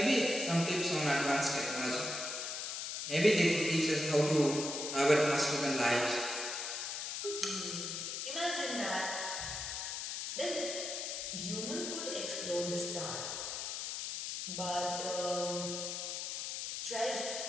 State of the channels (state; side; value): noise; left; hiss, 4 dB below the sound